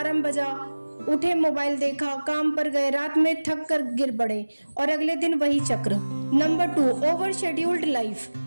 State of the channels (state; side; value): inverted; both; correlation -1.00